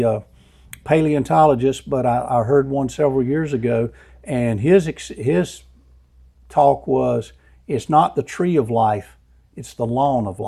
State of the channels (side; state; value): both; identical; correlation 1.00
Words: paleontologist, but I heard one several years ago, and his talk was, it's not the tree of life, it's the lawn of